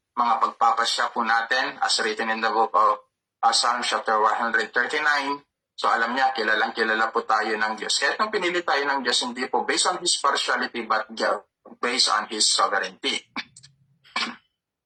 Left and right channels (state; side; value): identical; both; correlation 1.00